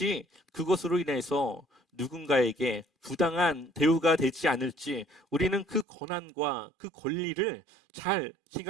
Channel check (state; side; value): drops out; left; at 5.9 s